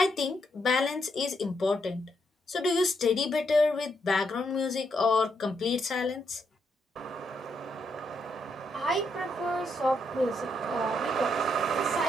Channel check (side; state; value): both; normal; correlation 0.78